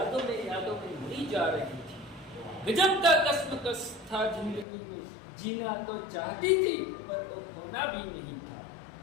में मरी जा रही थी। गजब का कश्मकश था जिंदगी में, जीना तो चाहती थी पर वो खोना भी नहीं था।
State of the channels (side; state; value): right; drops out; at 4.7 s